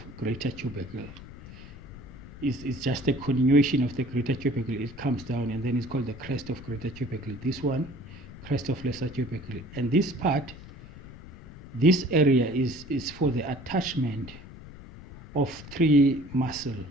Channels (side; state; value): left; noise; rumble, 16 dB below the sound